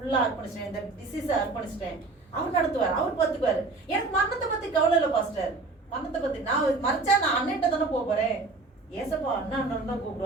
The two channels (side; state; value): left; quieter; 3.6 dB